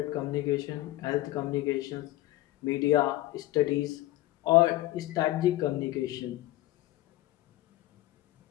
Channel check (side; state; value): right; quieter; 16.6 dB